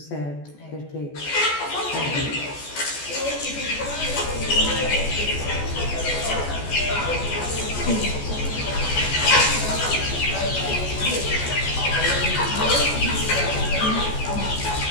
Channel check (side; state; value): right; late; 14 ms